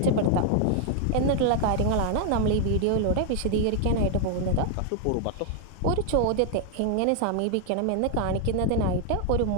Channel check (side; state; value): both; different; correlation 0.00